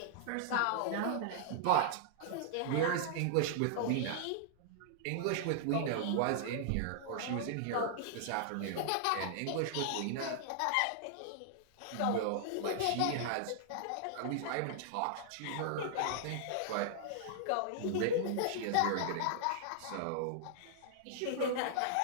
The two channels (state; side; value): different; both; correlation -0.01